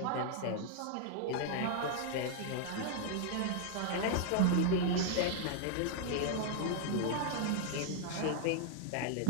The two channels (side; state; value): both; different; correlation 0.00